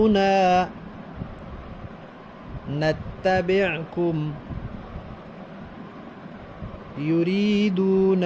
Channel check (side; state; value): both; identical; correlation 1.00